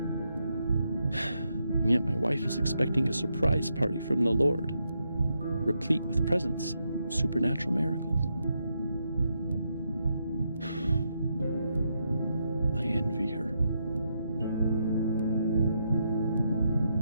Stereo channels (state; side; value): inverted; both; correlation -0.81